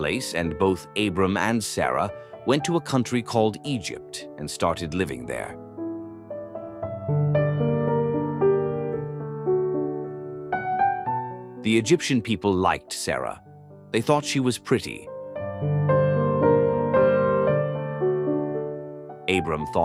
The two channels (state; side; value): identical; both; correlation 1.00